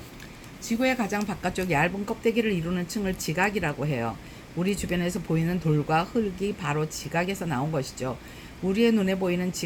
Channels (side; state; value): both; identical; correlation 1.00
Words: 지구의 가장 바깥쪽 얇은 껍데기를 이루는 층을 지각이라고 해요. 우리 주변에서 보이는 돌과 흙이 바로 지각에서 나온 것이죠. 우리의 눈에 보이는